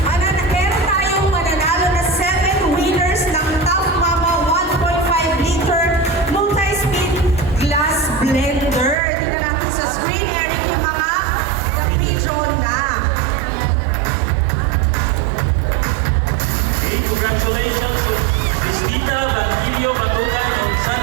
Meron tayong mananalo na 7 winners ng Top Mama 1.5 liter multi-speed glass blender. Tingnan natin sa screen, Eric, yung mga na-pre-draw na. Okay, congratulations to Cristita Batilio Batugan of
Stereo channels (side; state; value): left; drops out; at 9.0 s